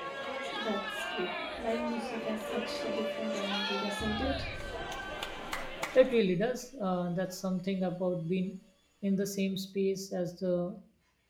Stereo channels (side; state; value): both; identical; correlation 1.00